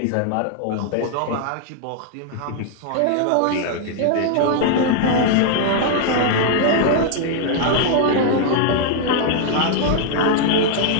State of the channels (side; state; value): both; different; correlation 0.00